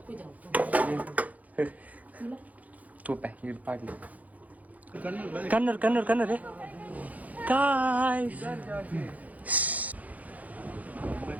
ತೂಪೆ ಇದು ಪಾಡ್ಲಿ Kannada guys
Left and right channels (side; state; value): left; late; 0.076 ms